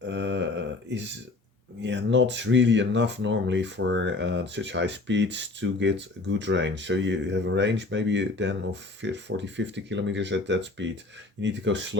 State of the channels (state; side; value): quieter; right; 3.3 dB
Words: is, yeah, not really enough normally for such high speeds to get a good range. So you have a range maybe then of 40, 50 kilometers at that speed. You need to go